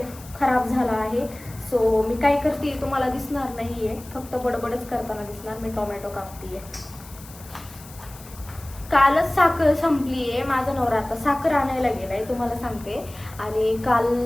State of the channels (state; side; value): noise; left; hiss, 20 dB below the sound